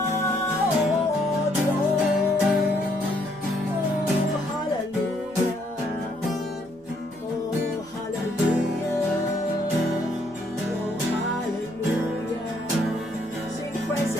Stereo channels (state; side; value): normal; both; correlation 0.69